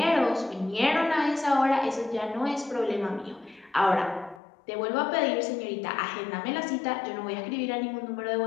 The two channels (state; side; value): drops out; right; at 4.4 s